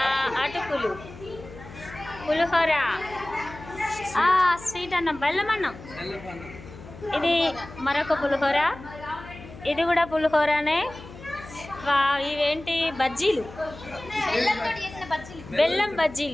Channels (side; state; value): left; noise; hum, 16 dB below the sound